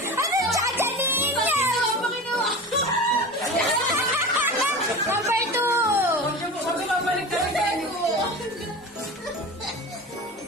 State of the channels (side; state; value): both; normal; correlation 0.31